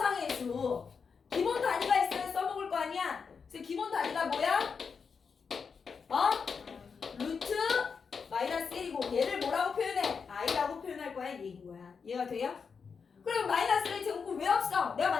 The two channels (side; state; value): right; quieter; 5.7 dB